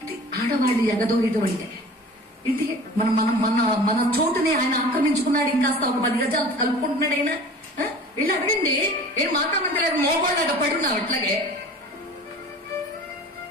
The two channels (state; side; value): normal; both; correlation 0.42